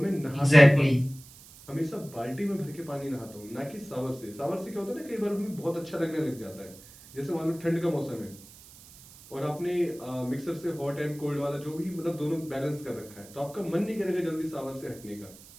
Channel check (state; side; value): noise; right; hiss, 20 dB below the sound